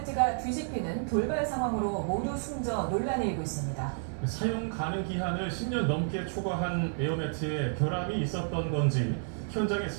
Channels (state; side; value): silent; left; 57 dB below the other